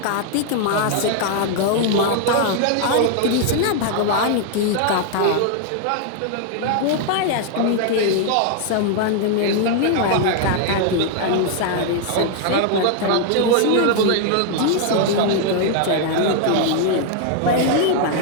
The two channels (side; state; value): both; different; correlation 0.00